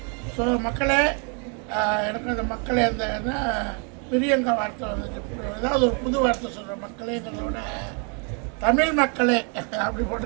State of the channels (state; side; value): quieter; left; 37.6 dB